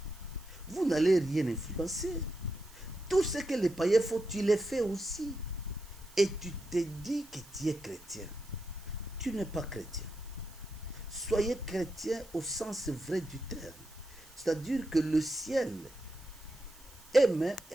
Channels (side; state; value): right; noise; hiss, 22 dB below the sound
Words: vous n'allez rien influencer. Tout ce que les païens font, tu les fais aussi. Et tu te dis que tu es chrétien. Tu n'es pas chrétien. Soyez chrétien au sens vrai du terme. C'est-à-dire que le ciel